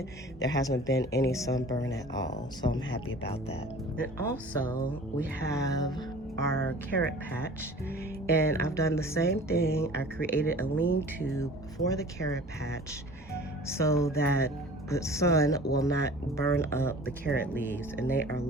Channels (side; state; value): both; normal; correlation 0.44